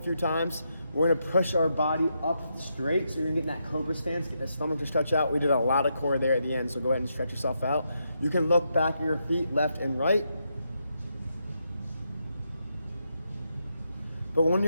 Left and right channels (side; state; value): both; inverted; correlation -0.82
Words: few times, we're gonna push our body up straight. So you're gonna get in that cobra stance, get the stomach to stretch out. We did a lot of core there at the end, so go ahead and stretch yourself out. You can look back at your feet, left and right. But when